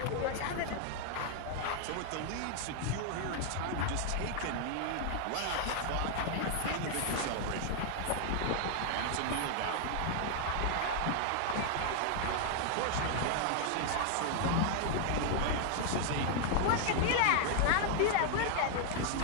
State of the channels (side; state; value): both; different; correlation 0.00